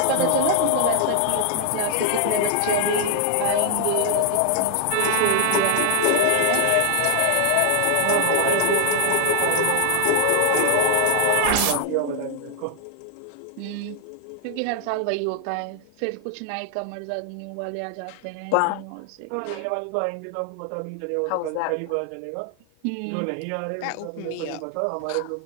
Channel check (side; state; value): both; different; correlation 0.00